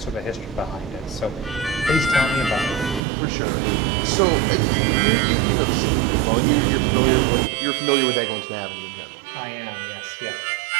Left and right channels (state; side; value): drops out; left; at 3.0 s